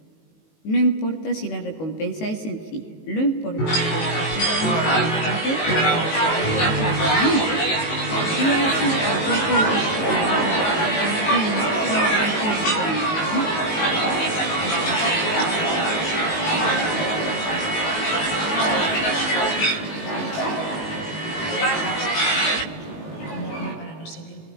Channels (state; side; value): late; right; 19 ms